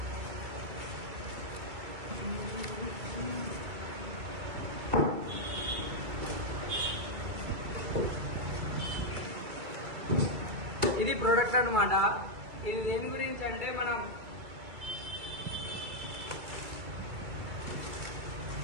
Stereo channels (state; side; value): late; left; 2.3 ms